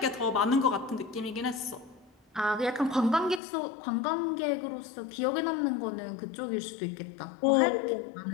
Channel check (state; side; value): drops out; right; at 3.4 s